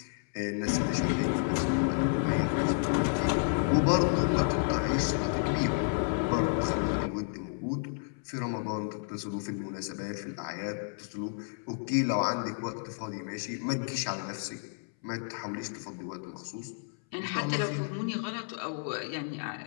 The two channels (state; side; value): silent; right; 57 dB below the other